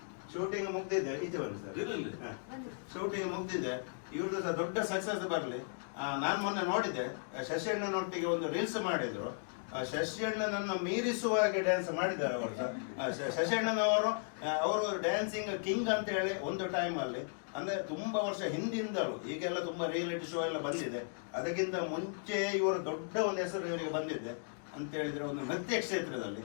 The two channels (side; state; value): right; silent; digital silence